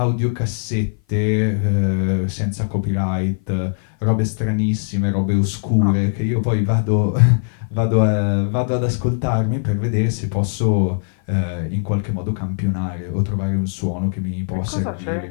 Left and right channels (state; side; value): silent; right; 56 dB below the other